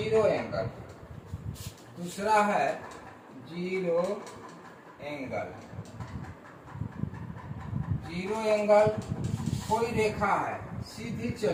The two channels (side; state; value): both; identical; correlation 1.00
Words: angle. दूसरा है जीरो एंगल। जीरो एंगल कोई रेखा है सीधी